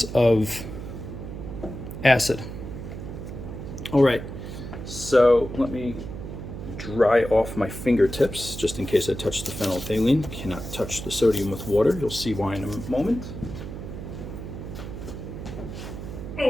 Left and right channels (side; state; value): right; noise; hum, 9 dB below the sound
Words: of acid. All right, so let me dry off my fingertips just in case I touch the phenolphthalein. You cannot touch the sodium with water. You'll see why in a moment.